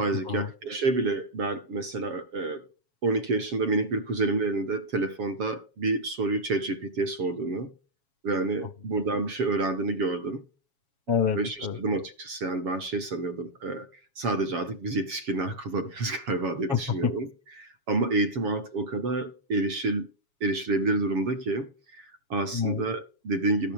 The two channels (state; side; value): late; left; 7.3 ms